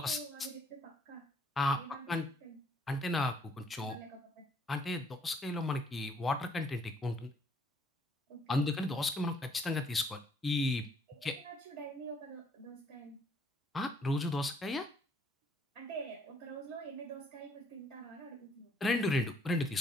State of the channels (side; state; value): both; normal; correlation 0.66